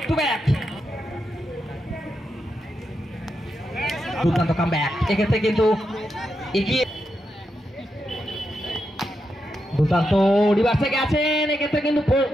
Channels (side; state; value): both; normal; correlation 0.85